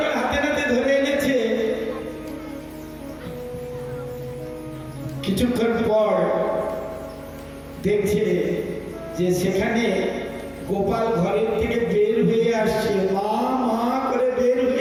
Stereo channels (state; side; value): identical; both; correlation 1.00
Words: হাতে নাতে ধরে এনেছে, কিছুক্ষণ পর দেখছে যে সেখানে গোপাল ঘরের থেকে বের হয়ে আসছে, মা মা করে বের